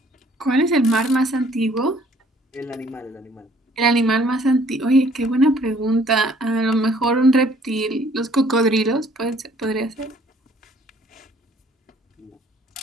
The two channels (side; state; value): both; normal; correlation 0.59